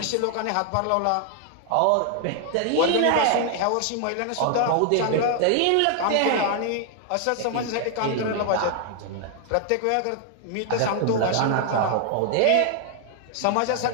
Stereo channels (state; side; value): different; both; correlation 0.00